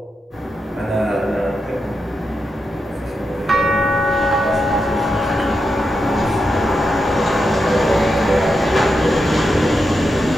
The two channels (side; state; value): both; normal; correlation 0.86